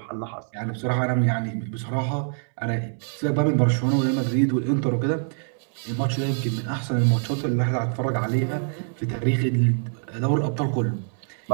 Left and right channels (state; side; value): silent; left; 62 dB below the other